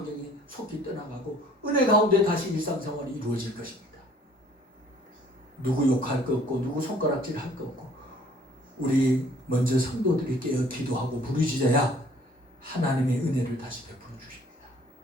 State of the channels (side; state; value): both; normal; correlation 0.56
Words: 속히 떠나가고 은혜 가운데 다시 일상생활이 이루어질 것입니다. 누구 욕할 거 없고 누구 손가락질 할 거 없고 우리 먼저 성도들이 깨어 기도하고 부르짖어야 하나님의 은혜를 다시 베풀어 주십니다.